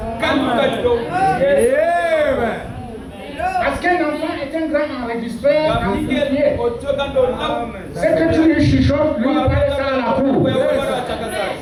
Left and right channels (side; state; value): both; identical; correlation 1.00